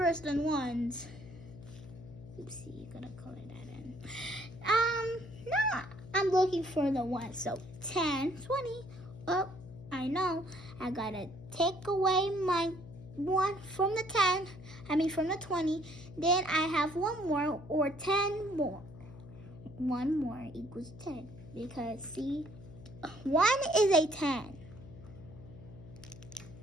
than 1s. Oopsie, you're gonna color that in. Now I'm looking for the 1. So 10, 20. Oh, I know. I gotta take away my 1 from the 10. From the 20. Then I have 1 more, or 10 more. 1 more equals 10. Because see, 1 is a 10.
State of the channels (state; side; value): noise; left; hum, 16 dB below the sound